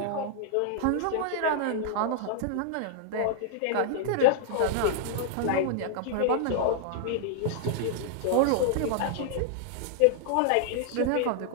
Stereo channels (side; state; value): both; different; correlation -0.01